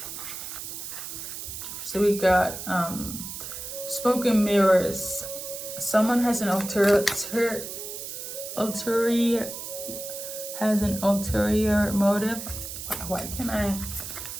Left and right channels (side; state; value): right; noise; hiss, 8 dB below the sound